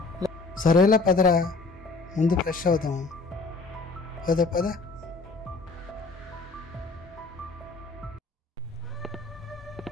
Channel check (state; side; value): quieter; right; 3.8 dB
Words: సరేలా పదరా, ముందు ఫ్రెష్ అవుతాం. పద పద.